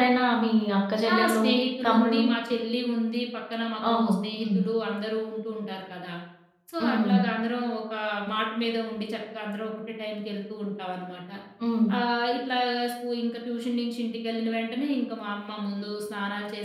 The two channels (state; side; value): identical; both; correlation 1.00